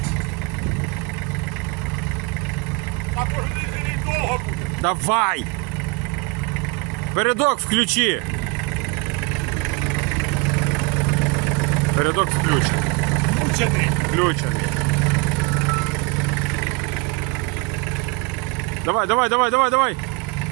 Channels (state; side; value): quieter; left; 28.9 dB